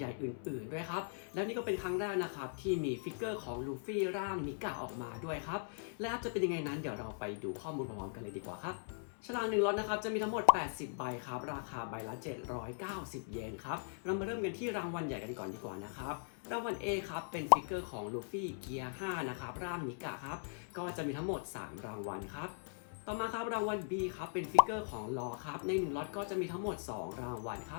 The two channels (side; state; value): right; silent; 51 dB below the other